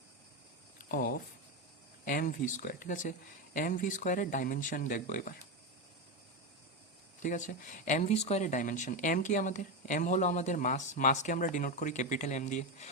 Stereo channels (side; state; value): both; normal; correlation 0.13